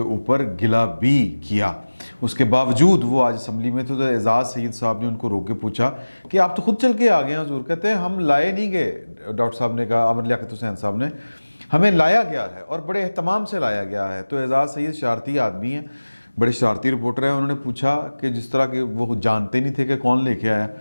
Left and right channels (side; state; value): both; inverted; correlation -1.00